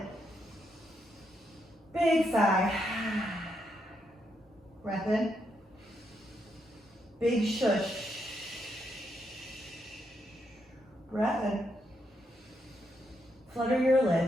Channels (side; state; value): both; normal; correlation 0.79